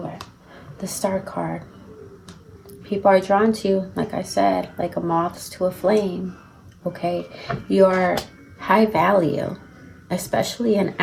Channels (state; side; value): identical; both; correlation 1.00